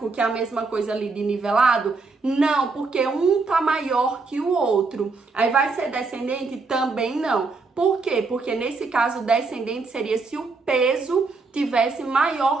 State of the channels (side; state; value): left; quieter; 4.1 dB